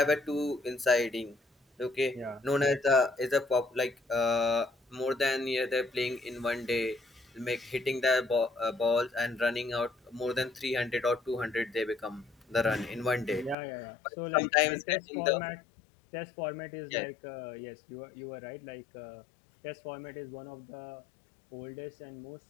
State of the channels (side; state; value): right; drops out; at 13.6 s